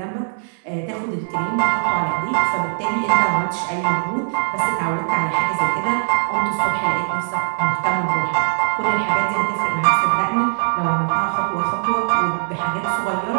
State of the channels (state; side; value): silent; left; digital silence